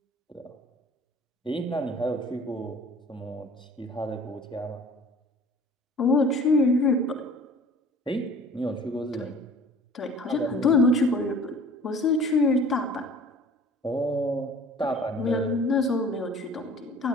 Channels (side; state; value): both; normal; correlation 0.48